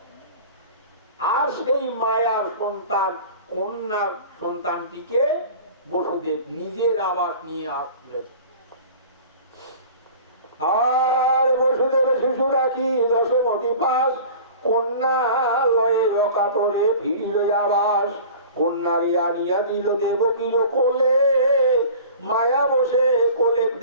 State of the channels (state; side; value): inverted; both; correlation -0.41